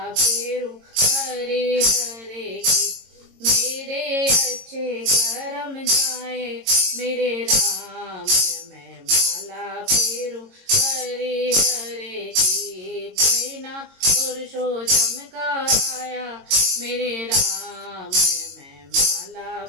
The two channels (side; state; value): left; late; 22 ms